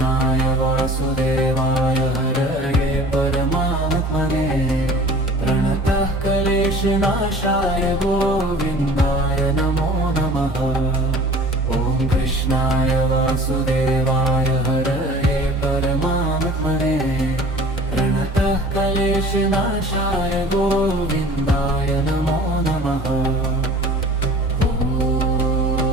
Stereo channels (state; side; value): normal; both; correlation 0.45